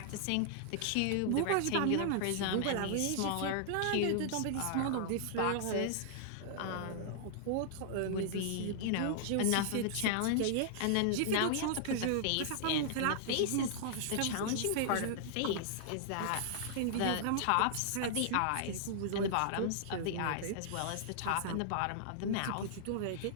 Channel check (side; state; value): both; different; correlation -0.01